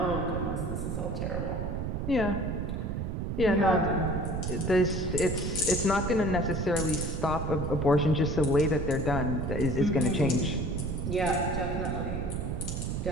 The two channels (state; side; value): noise; right; rumble, 2 dB below the sound